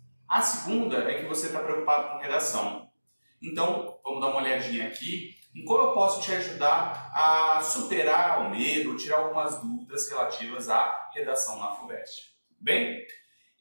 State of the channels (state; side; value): inverted; both; correlation -1.00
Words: A segunda é que você está preocupado com redação. Então, vamos dar uma olhadinha aqui em como eu posso te ajudar a superar o medo, tirar algumas dúvidas relativas à redação na FUVEST. Bem?